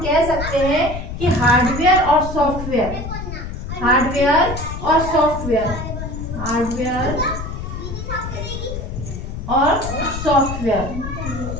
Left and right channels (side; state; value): left; noise; rumble, 7 dB below the sound